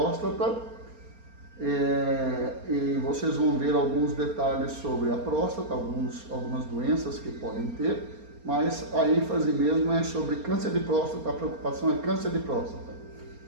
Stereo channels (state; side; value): late; left; 4.3 ms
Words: E vocês vão ver alguns detalhes sobre a próstata, algumas doenças que podem ter, mas a ênfase mesmo é sobre câncer de próstata, a preocupação é câncer de próstata.